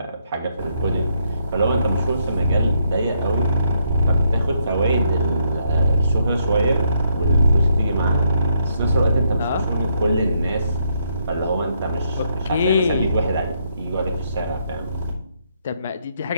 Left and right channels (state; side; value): inverted; both; correlation -0.74